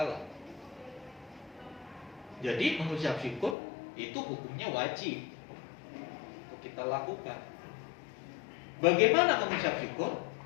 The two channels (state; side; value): drops out; right; at 3.6 s